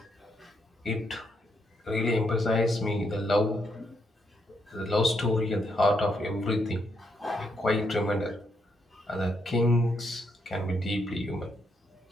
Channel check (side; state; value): both; normal; correlation 0.77